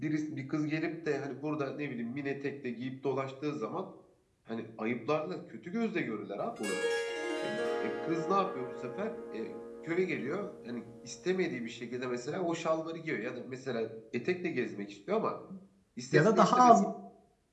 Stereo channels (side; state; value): both; identical; correlation 1.00